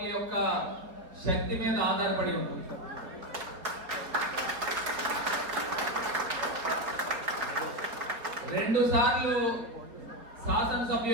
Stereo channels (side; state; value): left; late; 4.1 ms